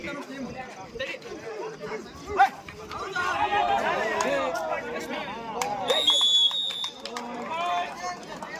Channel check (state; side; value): identical; both; correlation 1.00